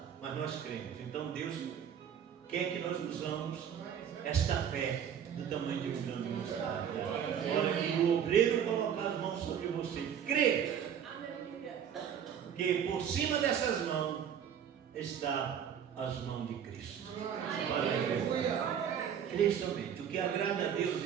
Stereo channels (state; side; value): quieter; left; 8.6 dB